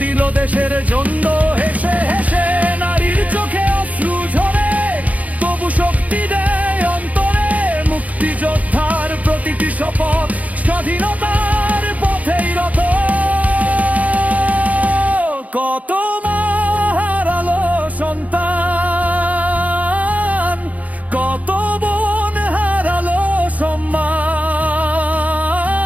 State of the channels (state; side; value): late; left; 0.072 ms